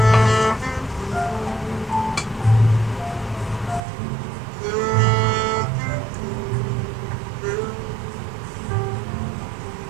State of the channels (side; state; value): left; drops out; at 3.8 s